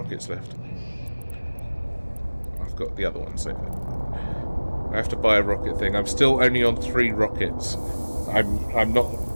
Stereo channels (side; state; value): both; inverted; correlation -1.00